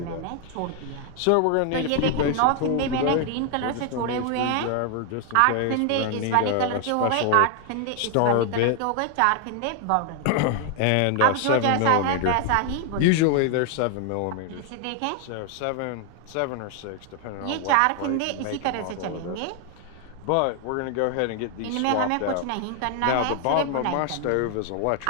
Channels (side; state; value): both; different; correlation 0.00